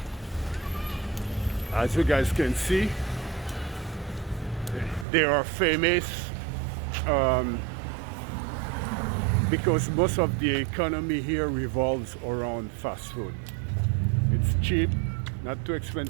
as you guys can see, they are famous because most of the economy here revolves around fast food. It's cheap, not too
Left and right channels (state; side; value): drops out; left; at 5.1 s